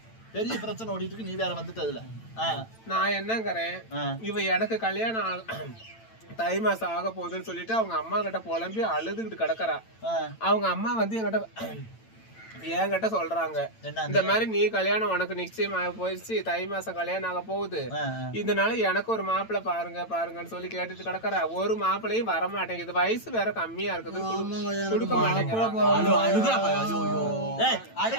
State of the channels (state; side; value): late; right; 9.0 ms